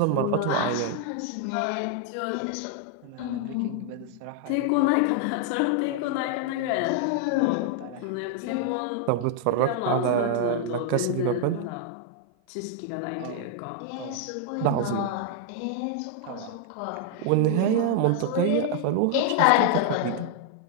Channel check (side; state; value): both; different; correlation 0.00